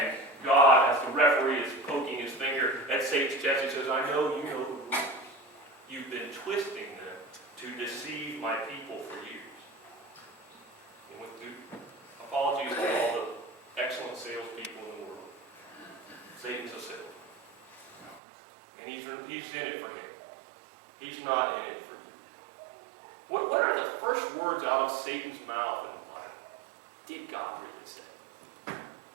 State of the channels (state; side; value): drops out; left; at 18.2 s